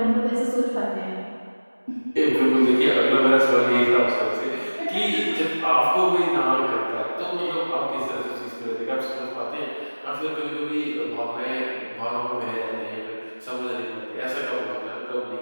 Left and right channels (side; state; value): both; inverted; correlation -1.00